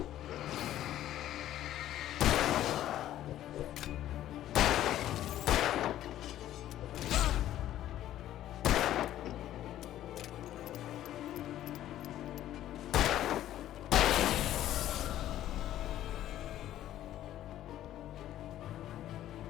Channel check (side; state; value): right; quieter; 12.7 dB